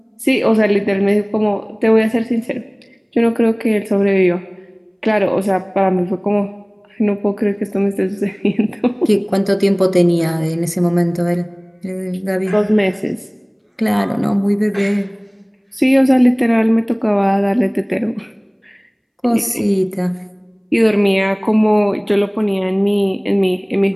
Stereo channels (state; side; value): identical; both; correlation 1.00